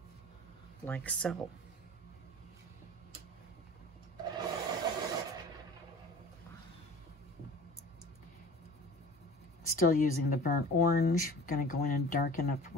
Like so. Still using the burnt orange. I'm going to go in and darken up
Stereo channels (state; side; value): normal; both; correlation 0.42